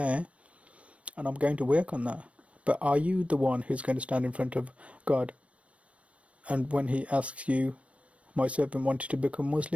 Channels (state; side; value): late; left; 0.063 ms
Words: and I'm going to work on that. But are you the one who's going to stand in front of God, and when He asks you, my servant wanted to become